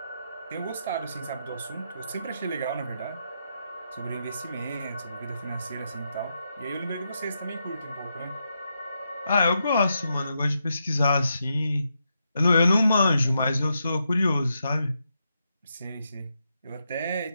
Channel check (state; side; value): inverted; both; correlation -0.83